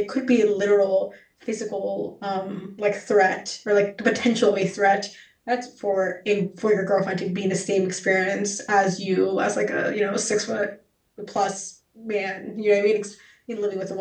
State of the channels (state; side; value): identical; both; correlation 1.00